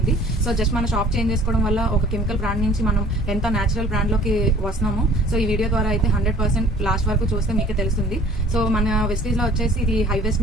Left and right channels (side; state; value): both; normal; correlation 0.51